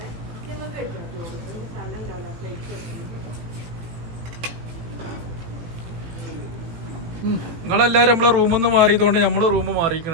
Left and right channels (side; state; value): left; late; 18 ms